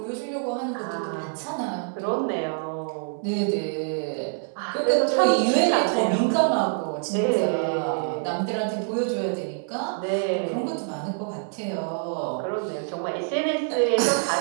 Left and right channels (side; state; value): left; silent; 61 dB below the other